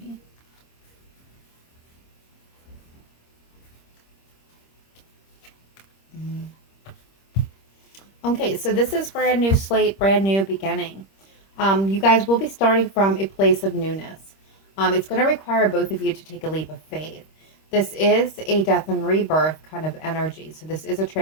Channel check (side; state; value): right; late; 26 ms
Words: Okay, so this is brand new slate, brand new beginning. You guys will be starting from a place of newness. It's going to require both of you to take a leap of faith. This is a death and rebirth kind of energy. So this is a